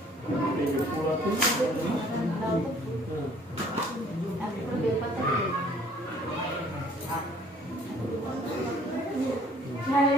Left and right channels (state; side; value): normal; both; correlation 0.57